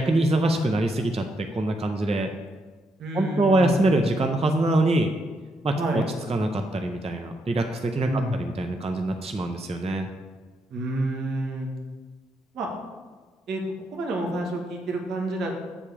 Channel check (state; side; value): normal; both; correlation 0.79